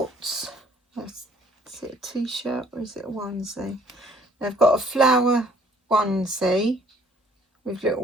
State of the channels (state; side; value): normal; both; correlation 0.59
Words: Is it a t-shirt or is it a onesie? They've got a flower onesie with